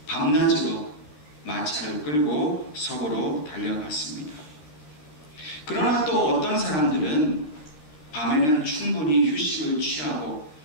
밤낮으로 마차를 끌고 서부로 달려갔습니다. 그러나 또 어떤 사람들은 밤에는 충분히 휴식을 취하고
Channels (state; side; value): late; right; 13 ms